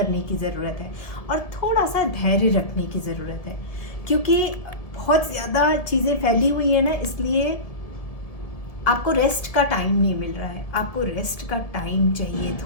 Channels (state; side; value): late; right; 1.7 ms